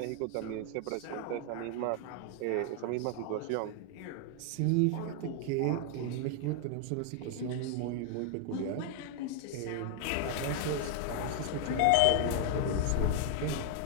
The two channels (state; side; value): different; both; correlation 0.00